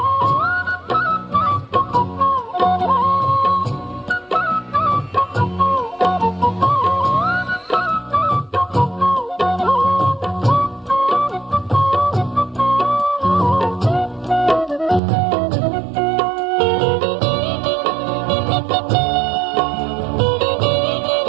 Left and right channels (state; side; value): drops out; left; at 15.0 s